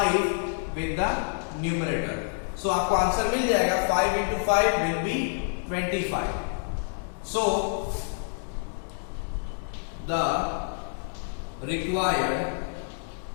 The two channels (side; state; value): right; silent; 60 dB below the other